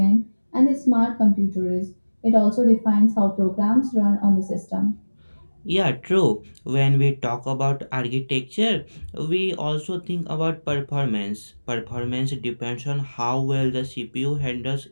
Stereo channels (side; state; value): both; inverted; correlation -1.00